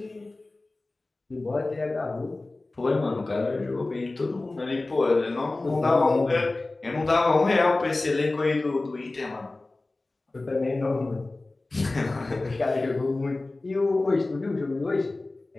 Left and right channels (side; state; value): right; quieter; 3.1 dB